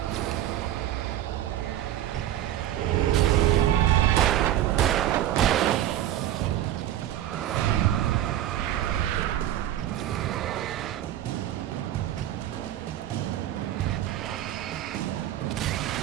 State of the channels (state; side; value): quieter; left; 12.3 dB